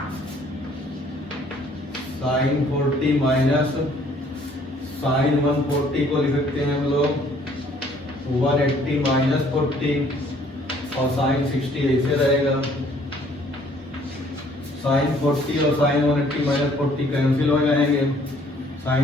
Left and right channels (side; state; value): both; normal; correlation 0.60